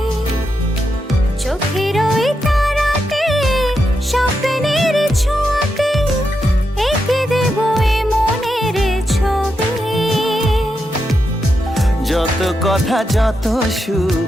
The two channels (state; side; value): normal; both; correlation 0.85